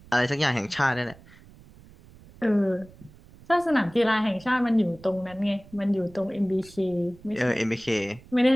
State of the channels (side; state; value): right; noise; rumble, 23 dB below the sound